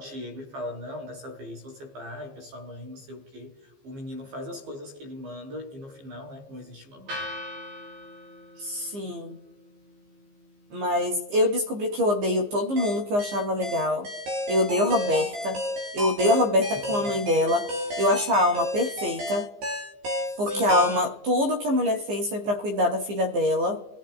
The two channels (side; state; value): left; late; 15 ms